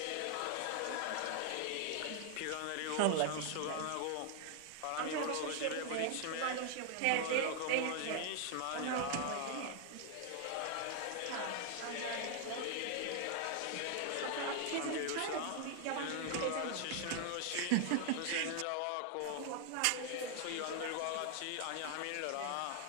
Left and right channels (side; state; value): both; different; correlation 0.00